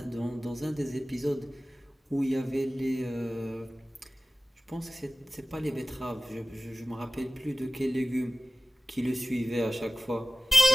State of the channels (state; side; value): normal; both; correlation 0.96